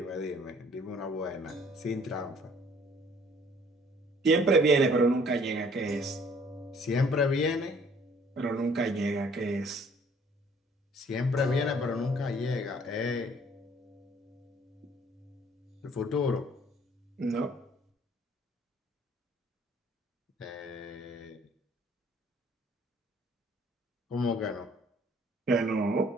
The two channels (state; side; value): normal; both; correlation 0.57